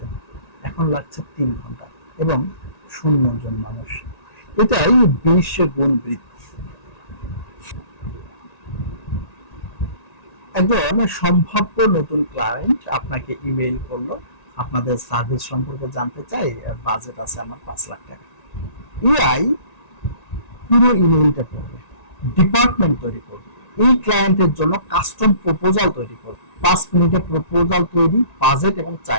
এখন লাগছে ৩ ঘন্টা, এবং ০ জন মানুষ। এটাই ২০ গুণ বৃদ্ধি। একজন সম্ভাব্য নতুন ক্লায়েন্ট আপনাকে ইমেইল করলো, আপনাদের সার্ভিস সম্পর্কে জানতে চাই, বাজেট আছে আমার 5 লাখ টাকা। এআই পুরো ইমেইলটা করবে, ডিপার্টমেন্ট তৈরি করবে, এই ক্লায়েন্টের জন্য কাস্টম প্রপোজাল তৈরি করবে, 5 মিনিটে প্রপোজাল তৈরি, বাজেট এবং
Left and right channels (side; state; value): right; late; 1.9 ms